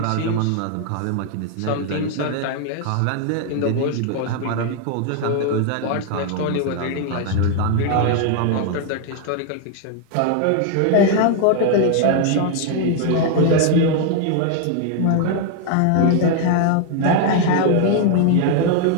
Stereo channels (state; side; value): different; both; correlation 0.00